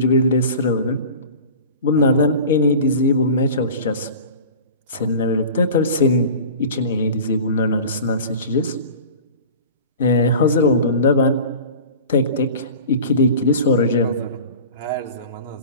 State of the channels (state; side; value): inverted; both; correlation -0.38